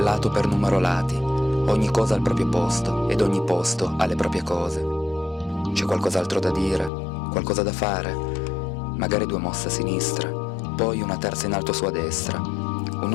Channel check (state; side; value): drops out; right; at 6.9 s